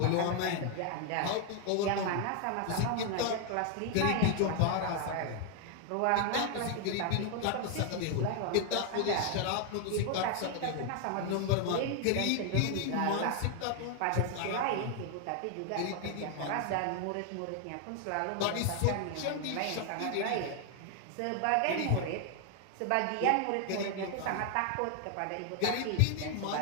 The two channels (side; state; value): both; different; correlation 0.00